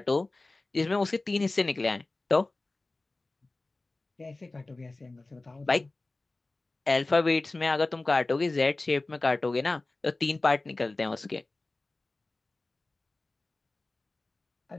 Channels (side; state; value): right; quieter; 3.1 dB